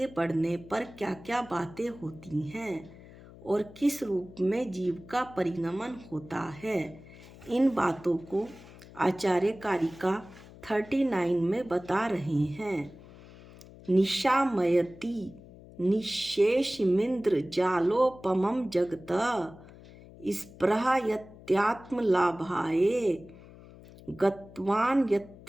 बढ़ने पर क्या क्या बातें होती हैं और किस रूप में जीव का परिणमन होता है, इन बातों को आचार्य कारिका 39 में बता रहे हैं। निशामयति निशेषमिन्द्र जालोपमं जगत स्पृहयत्यात्मलाभाय गत्वान्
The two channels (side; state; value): left; noise; hum, 20 dB below the sound